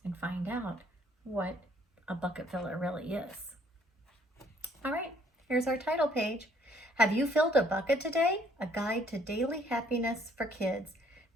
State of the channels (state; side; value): normal; both; correlation 0.63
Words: and find out what a bucket filler really is. All right, here's our title page. Have You Filled a Bucket Today? A Guide to Daily Happiness for Kids